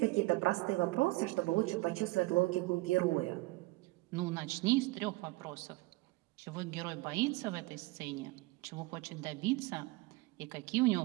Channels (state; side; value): quieter; left; 21.5 dB